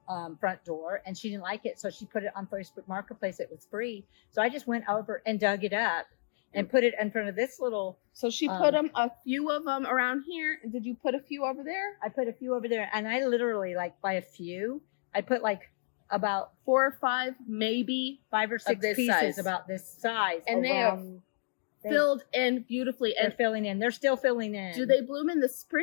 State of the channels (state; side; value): silent; right; digital silence